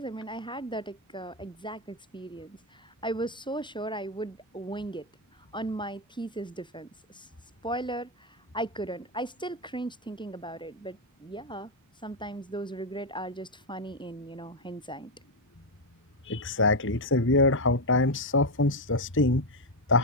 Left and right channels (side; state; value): both; normal; correlation 0.03